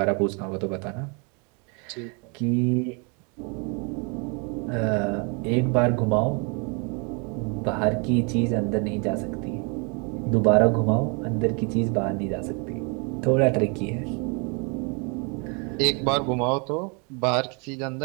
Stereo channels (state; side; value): quieter; left; 34.4 dB